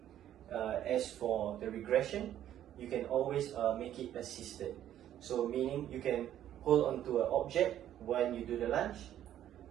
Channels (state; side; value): quieter; left; 11.5 dB